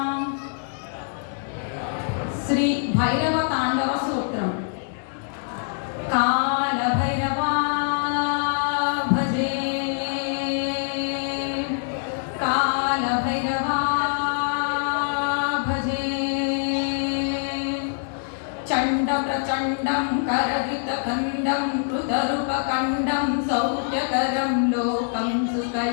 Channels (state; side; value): silent; right; digital silence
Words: శ్రీ భైరవ తాండవ సూత్రం. కాల భైరవా భజే, కాల భైరవా భజే. చండ ప్రచండం కరగితకండం కృతరూపకండం సౌఖ్యకరం లోకం